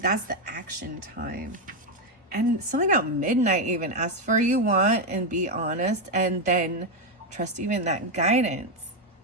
the action time. And something about midnight even. Ask for what you want and be honest. And then trust even that guidance.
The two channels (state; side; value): normal; both; correlation 0.05